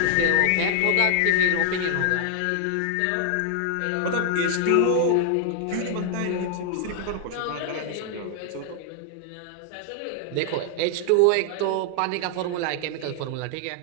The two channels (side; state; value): both; different; correlation 0.00